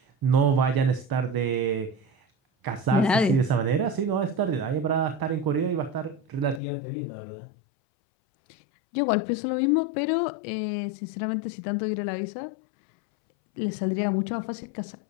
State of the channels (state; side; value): drops out; right; at 6.6 s